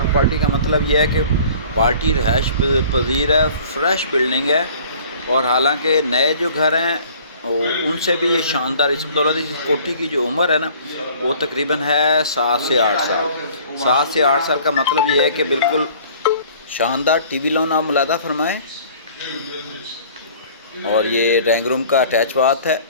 पार्टी का मतलब यह है कि पार्टी रहायश पजीर है, फ्रेश बिल्डिंग है। और हालांकि नए जो घर हैं उनसे भी ये शानदार। इस बदौलत इस कोठी की जो उम्र है ना, वो तकरीबन है 7 से 8 साल। 7 से 8 साल का मतलब ये है कि बिल्कुल शानदार टीवी लोन आप मुलादा फरमाएँ। और ये ड्राइंग रूम का अटैच बाथ है,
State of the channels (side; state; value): both; inverted; correlation -0.50